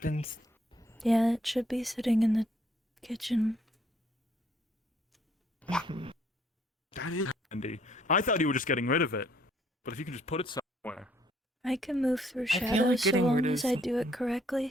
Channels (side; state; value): both; normal; correlation 0.65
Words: Yeah, it should be sitting in the kitchen. That is handy. I thought you were just getting rid of it. But if you can just put it somewhere. I can move through feel like shadows so getting long rid of as I do it